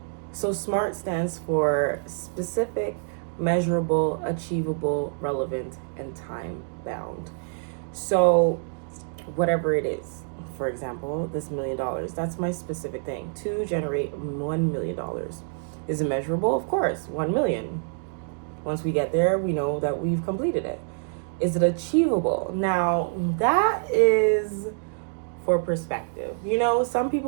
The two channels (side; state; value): left; silent; digital silence